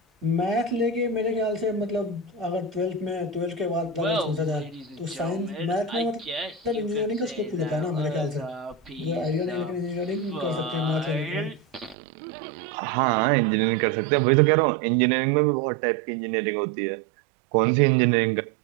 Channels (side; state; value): left; drops out; at 12.0 s